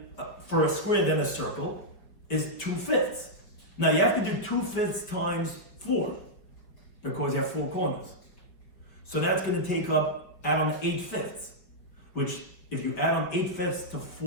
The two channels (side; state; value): right; late; 5.4 ms